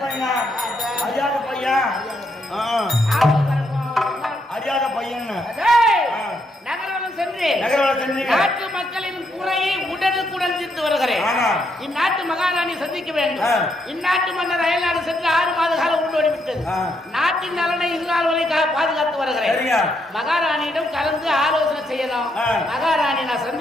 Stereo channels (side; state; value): both; normal; correlation 0.77